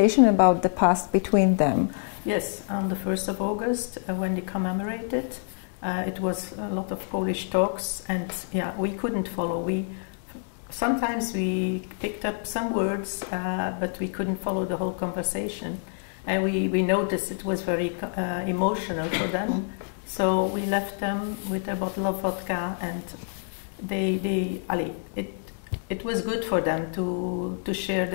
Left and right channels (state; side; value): silent; right; digital silence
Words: about the past between them? Yes, on the 1st of August, when they commemorated, it was a lot of Polish talks, and we couldn't follow. Sometimes we picked up some words, but we couldn't follow the whole conversation. And we noticed it was very emotional for them. So we left them with a bottle of vodka, and it was good for them to share